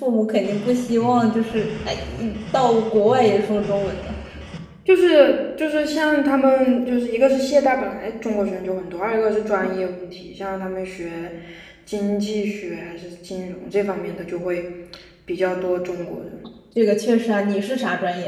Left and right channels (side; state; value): both; identical; correlation 1.00